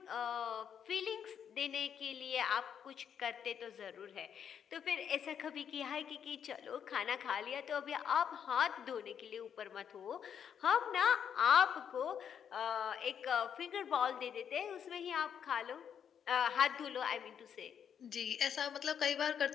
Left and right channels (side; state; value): right; quieter; 8.2 dB